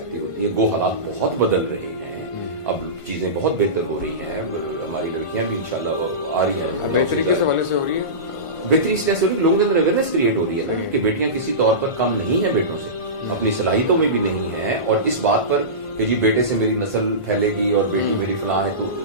ہوتی ہے. گو حالات بہت بدل رہے ہیں اب چیزیں بہت بہتر ہو رہی ہیں ہماری لڑکیاں بھی انشاءاللہ آ رہی ہیں بہتری کس حوالے سے ہو رہی ہے. بہتری اس لیے سے ہو رہی ہے لوگوں کے اندر اویئرنیس کریٹ ہو رہی ہے نا کہ بیٹیاں کسی طور پر کم نہیں ہیں بیٹوں سے اپنی صلاحیتوں میں بھی نہیں ہیں اور اس بات پر کہ جی بیٹے سے میری نسل پھیلے گی اور بیٹی میری فلاں ہے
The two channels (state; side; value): late; right; 1.5 ms